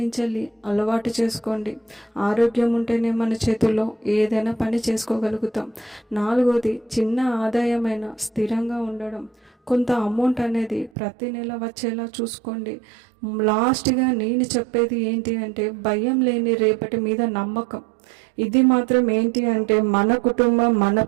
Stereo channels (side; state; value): left; drops out; at 10.9 s